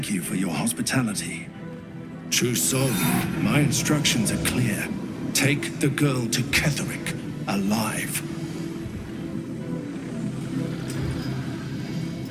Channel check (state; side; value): identical; both; correlation 1.00